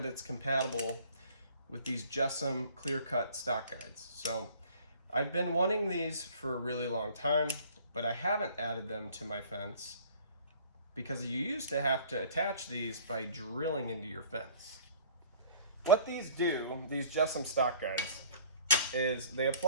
it's compatible with these Jessum Clearcut Stock Guides. So I've been wanting these for a really long time, but I haven't added them to my fence because you used to have to attach these by drilling into your fence. What these do, these Jessum Stock Guides, is they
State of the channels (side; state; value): both; inverted; correlation -0.51